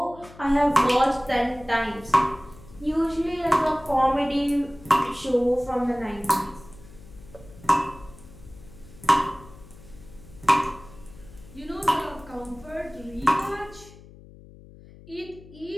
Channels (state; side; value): noise; left; hum, 20 dB below the sound